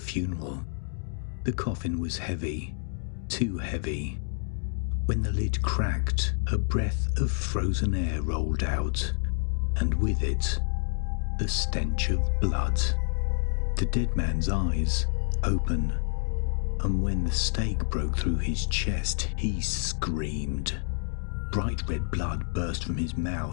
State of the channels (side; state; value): right; silent; 59 dB below the other